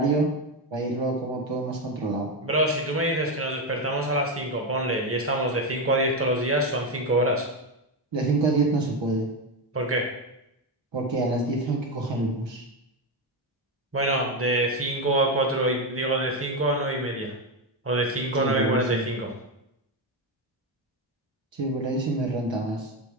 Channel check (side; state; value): both; normal; correlation 0.11